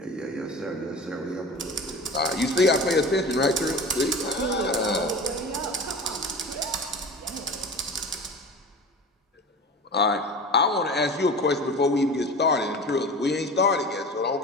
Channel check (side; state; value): both; normal; correlation 0.34